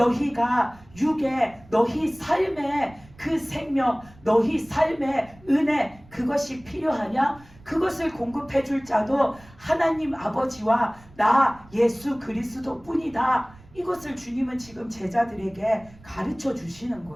육에 너희 삶의 그 생명, 너희 삶의 은혜, 그것이 필요하냐? 그것을 공급해 줄 자도 하나님 아버지와 나 예수 그리스도 뿐이다. 이것을 주님은 지금 제자들에게 가르쳐 주시는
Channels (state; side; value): noise; right; rumble, 24 dB below the sound